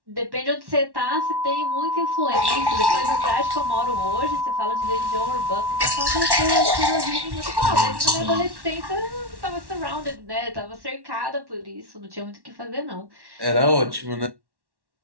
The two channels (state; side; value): late; left; 1.1 ms